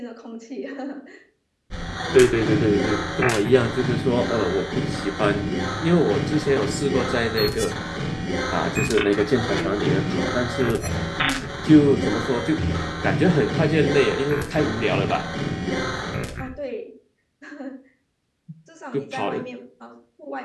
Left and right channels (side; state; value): both; identical; correlation 1.00